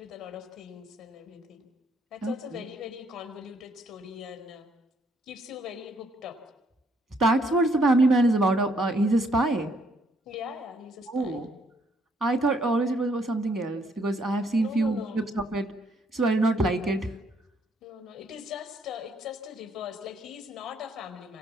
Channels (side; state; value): both; normal; correlation 0.69